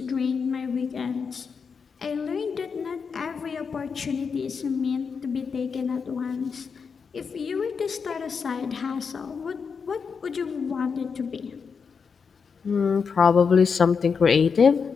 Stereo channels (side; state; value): right; quieter; 5.8 dB